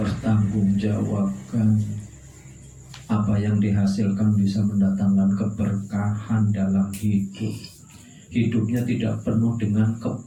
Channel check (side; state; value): both; identical; correlation 1.00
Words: Apa yang dihasilkan bisa mendatangkan keberkahan dalam hidup. Hidupnya tidak penuh dengan